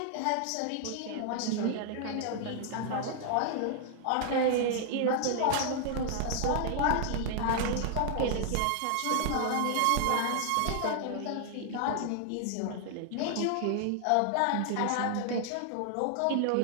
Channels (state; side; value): different; both; correlation 0.00